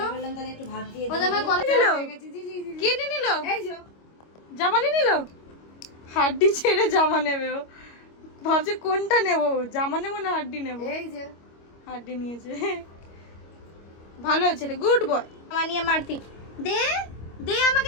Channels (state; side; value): late; right; 25 ms